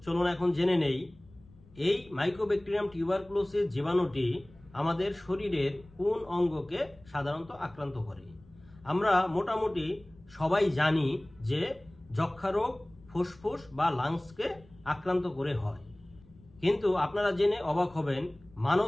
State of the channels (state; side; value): noise; left; rumble, 25 dB below the sound